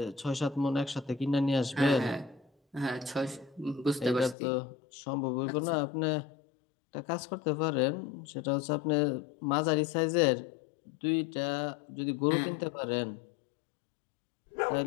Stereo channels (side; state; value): right; drops out; at 4.4 s